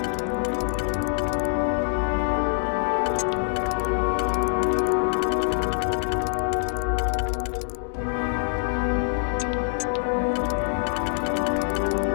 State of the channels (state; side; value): silent; right; 62 dB below the other